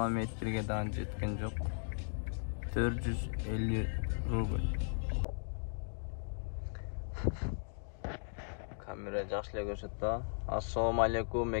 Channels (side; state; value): right; silent; digital silence